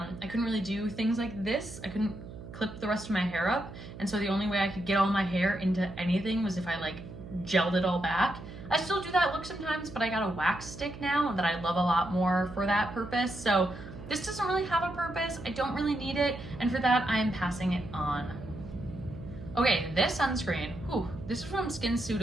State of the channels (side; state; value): right; noise; hum, 13 dB below the sound